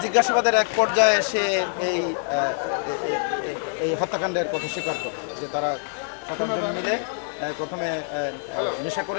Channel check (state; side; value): silent; right; digital silence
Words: জিজ্ঞাসাবাদের এক পর্যায়ে সে এই হত্যাকাণ্ডের কথা স্বীকার করে যে তারা 7 জন মিলে প্রথমে নেশা